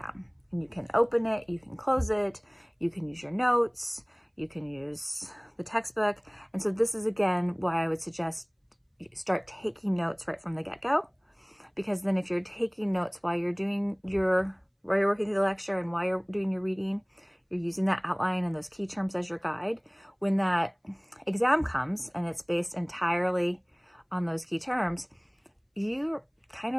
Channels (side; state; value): both; identical; correlation 1.00